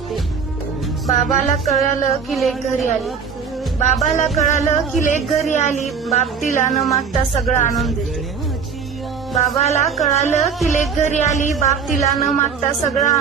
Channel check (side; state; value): left; quieter; 6.1 dB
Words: बाबाला कळालं की लेक घरी आली. बाबाला कळालं की लेक घरी आली. बाप तिला न मागता सगळं आणून देते. बाबाला कळालं की लेक घरी आली. बाप तिला न मागता सगळं